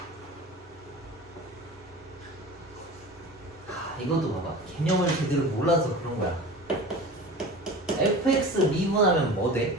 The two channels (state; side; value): normal; both; correlation 0.35